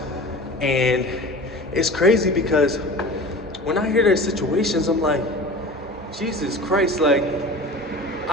And it's crazy because when I hear their situations, I'm like, Jesus Christ, like,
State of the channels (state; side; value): normal; both; correlation 0.37